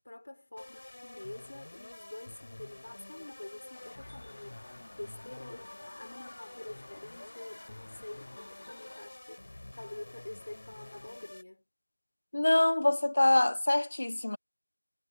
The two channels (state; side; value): inverted; both; correlation -1.00